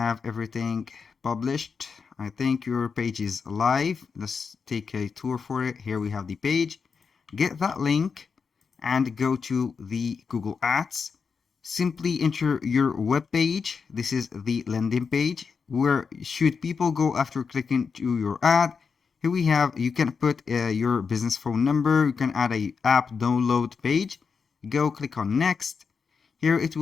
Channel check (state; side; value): quieter; right; 5.6 dB